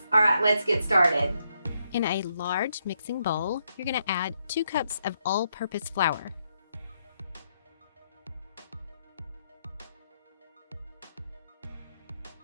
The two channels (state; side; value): inverted; both; correlation -0.78